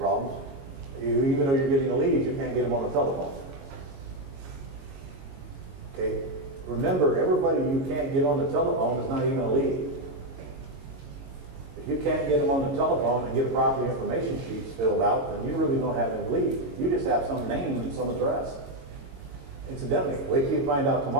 Even though you're getting a lead, you can't get them on the telephone. Okay? Remember, everybody you can't get on the telephone is not even a lead. If you can't get them on the telephone and get property information sheets filled out, then you really don't have any lead. You just have some name and some address. Incidentally, wait till you find out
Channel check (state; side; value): late; left; 22 ms